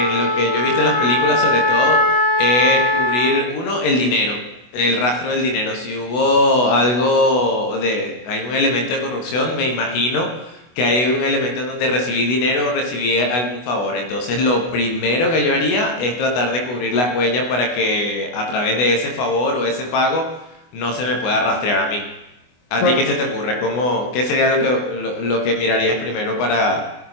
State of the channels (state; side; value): late; right; 24 ms